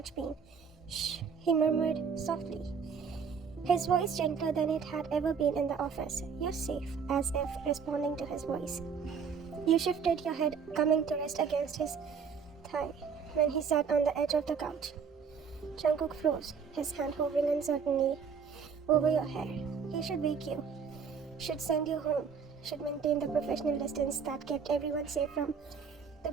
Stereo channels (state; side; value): quieter; left; 6.2 dB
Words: pain. Shh, he murmured softly, his voice gentler than it had ever been in the office. You're safe, as if responding to his voice. You shifted your head, coming to rest against his thigh when he sat on the edge of the couch. Jungkook froze, his hand hovering uncertainly over your hair. He should wake you, should send you home, should maintain the professional distance that kept everyone safe from the